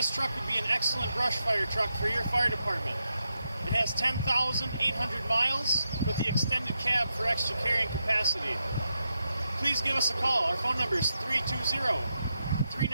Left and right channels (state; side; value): inverted; both; correlation -0.85